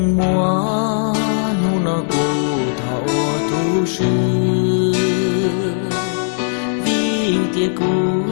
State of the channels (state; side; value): silent; right; digital silence